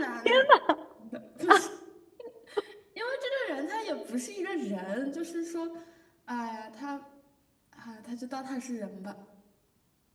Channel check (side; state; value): both; identical; correlation 1.00